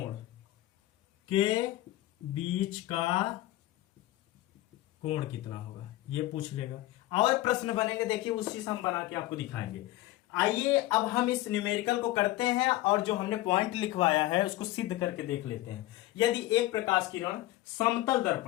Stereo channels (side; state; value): right; quieter; 16.7 dB